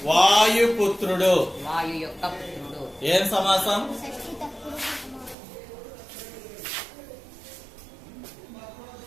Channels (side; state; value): left; drops out; at 5.4 s